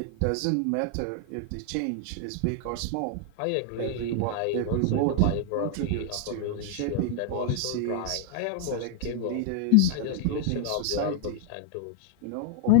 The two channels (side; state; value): both; different; correlation 0.00